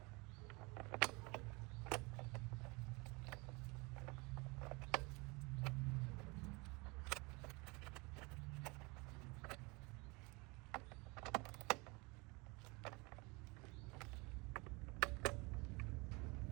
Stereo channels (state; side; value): quieter; left; 26.9 dB